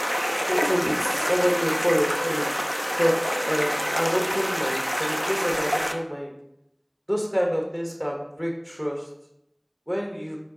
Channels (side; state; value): both; identical; correlation 1.00